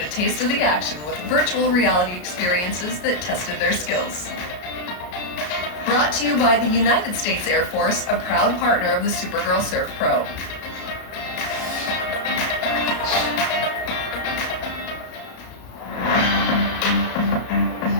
a taste of the action with virtual reality experiences that tested their skills. Brought to you by the United States Air Force, a proud partner of the Supergirl Surf Pro.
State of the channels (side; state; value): right; late; 33 ms